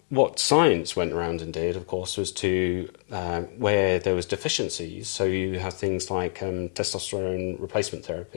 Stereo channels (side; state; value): right; silent; digital silence